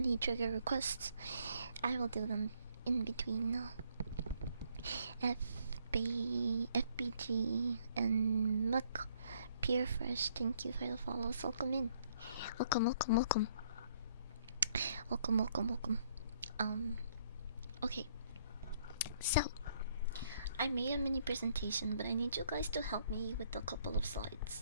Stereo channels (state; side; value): inverted; both; correlation -0.66